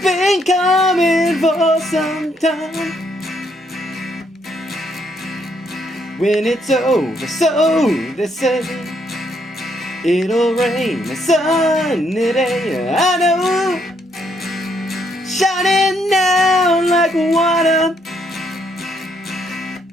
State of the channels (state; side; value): normal; both; correlation 0.72